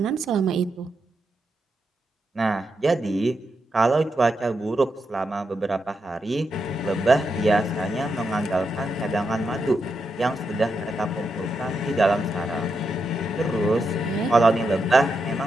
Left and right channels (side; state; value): both; normal; correlation 0.84